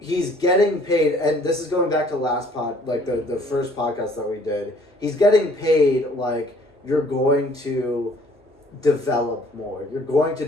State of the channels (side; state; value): both; normal; correlation 0.58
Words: getting paid, and this is going back to last the first podcast that we did, he's getting paid like you're going to develop more. You're going to